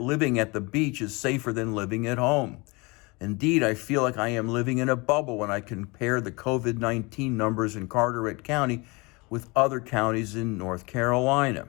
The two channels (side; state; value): right; quieter; 26.7 dB